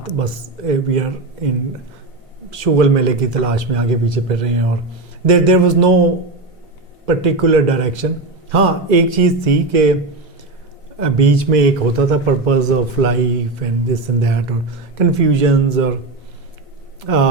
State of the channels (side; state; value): left; quieter; 3.1 dB